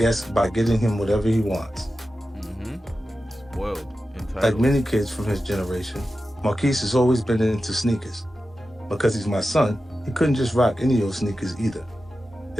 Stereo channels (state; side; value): normal; both; correlation 0.93